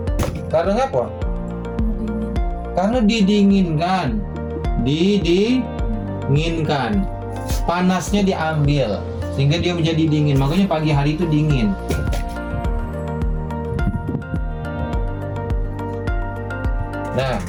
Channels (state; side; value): identical; both; correlation 1.00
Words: Karena apa? Karena didinginkan. Panasnya diambil sehingga dia menjadi dingin. Makanya pagi hari itu dingin. Nah,